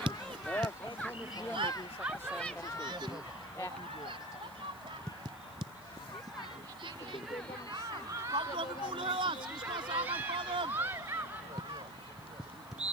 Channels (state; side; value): noise; left; hiss, 22 dB below the sound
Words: Kom du med muligheder! Skal vi slå sammen for dem?